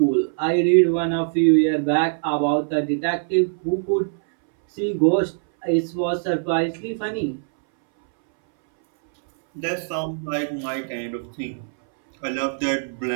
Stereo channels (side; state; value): left; silent; 62 dB below the other